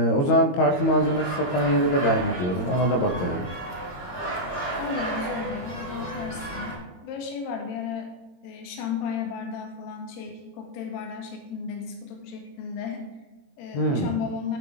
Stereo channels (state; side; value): late; right; 22 ms